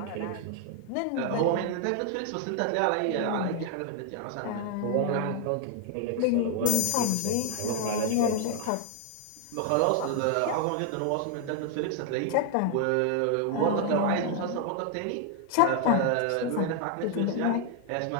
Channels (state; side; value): different; both; correlation 0.00